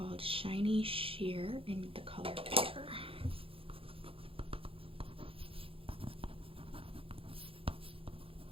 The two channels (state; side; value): late; left; 0.27 ms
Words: Shiny Sheer in the color Pear.